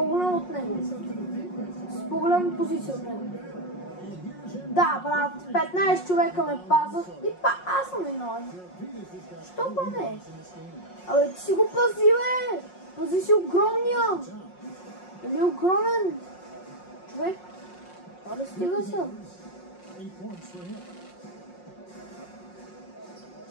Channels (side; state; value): right; late; 5.5 ms